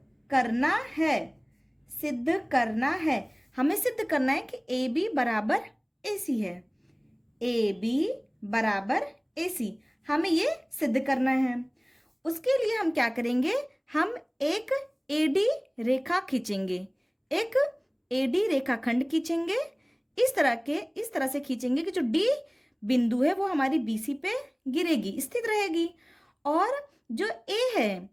करना है, सिद्ध करना है। हमें सिद्ध करना है कि ए बी बराबर ए सी है। ए बी बराबर ए सी, हमें ये सिद्ध करना है। उसके लिए हम क्या करेंगे? हम एक एडी रेखा खींचेंगे, एक एडी रेखाखंड खींचेंगे। इस तरह से खींचेंगे कि जो डी बिंदु है वो हमारी बीसी पे गिरेगी, स्थित रहेगी। और जो ए है,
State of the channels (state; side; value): identical; both; correlation 1.00